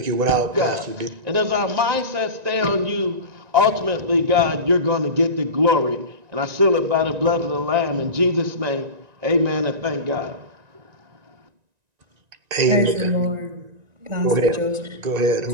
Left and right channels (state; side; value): late; left; 1.9 ms